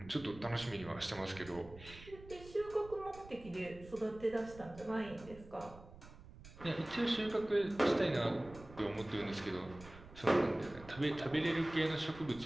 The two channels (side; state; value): right; noise; rumble, 18 dB below the sound